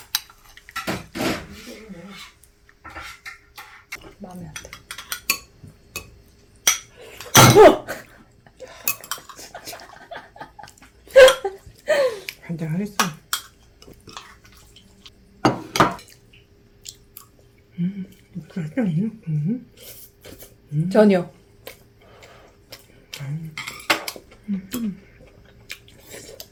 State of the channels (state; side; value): identical; both; correlation 1.00